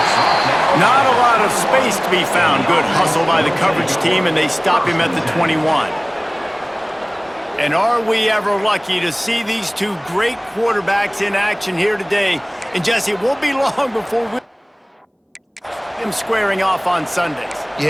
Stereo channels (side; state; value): both; identical; correlation 1.00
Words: Not a lot of space to be found. Good hustle by the coverage team, and they stop him at the 21. And are we ever lucky to see these two great quarterbacks in action here today? And Jesse, it won't be long before we him squaring off on Sundays.